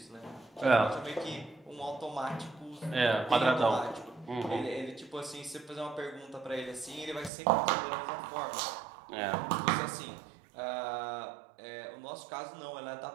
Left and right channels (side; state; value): left; drops out; at 7.3 s